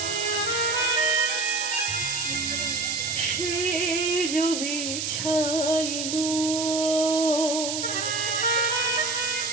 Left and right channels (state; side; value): noise; right; hiss, 2 dB below the sound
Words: সে জবি ছাইনু,